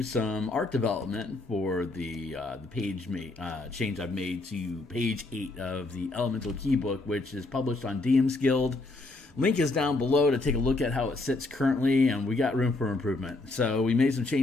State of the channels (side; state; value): right; quieter; 3.1 dB